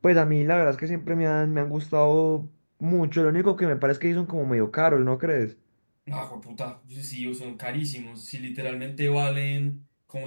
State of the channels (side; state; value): both; inverted; correlation -1.00